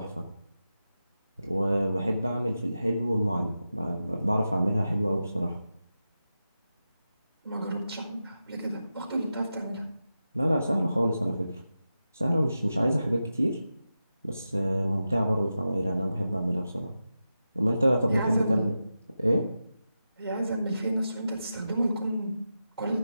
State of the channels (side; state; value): both; inverted; correlation -0.91